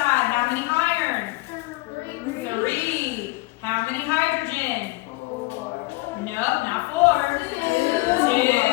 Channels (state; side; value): quieter; right; 22.7 dB